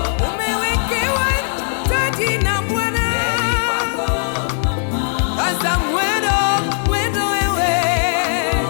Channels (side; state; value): right; silent; digital silence